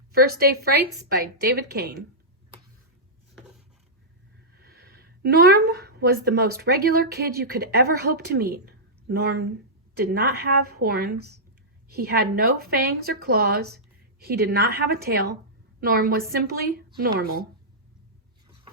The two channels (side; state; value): both; normal; correlation -0.12